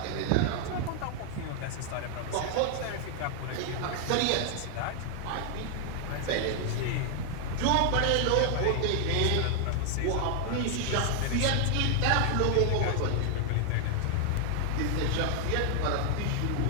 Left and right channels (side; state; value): both; different; correlation 0.00